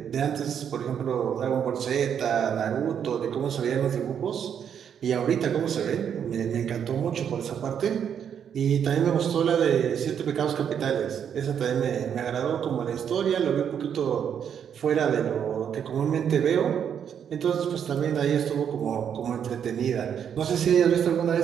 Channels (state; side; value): quieter; left; 8.3 dB